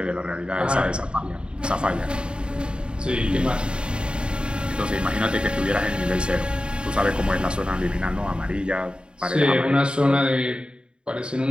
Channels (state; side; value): late; left; 0.052 ms